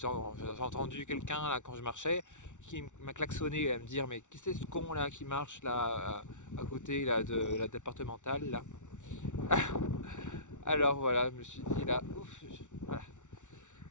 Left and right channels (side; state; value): right; late; 0.85 ms